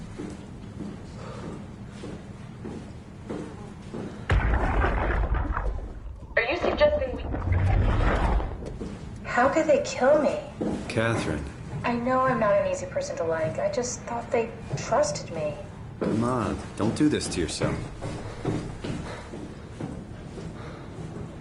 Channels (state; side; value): identical; both; correlation 1.00